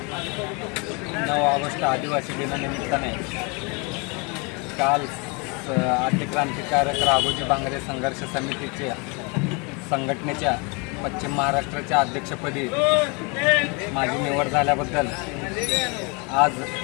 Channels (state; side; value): quieter; right; 31.2 dB